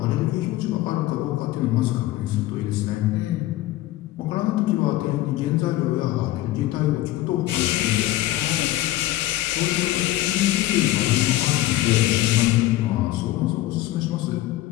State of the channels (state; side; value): quieter; right; 15.8 dB